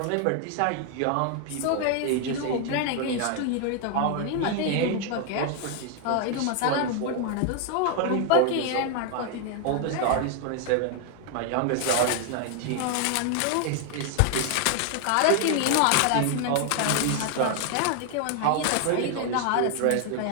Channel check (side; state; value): both; different; correlation 0.00